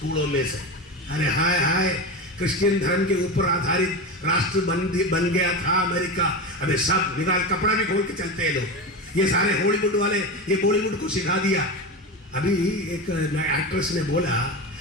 में से। अरे हाय हाय, क्रिश्चियन धर्म के ऊपर आधारित राष्ट्र बन गया था अमेरिका। अबे सब निकाल, कपड़ा भी खोल के चलते हैं लोग। ये सारे हॉलीवुड वाले ये बॉलीवुड को सिखा दिया। अभी एक एक्ट्रेस ने बोला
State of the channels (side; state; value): both; normal; correlation 0.21